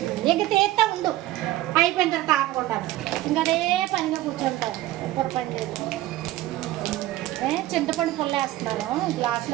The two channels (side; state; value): left; quieter; 15.8 dB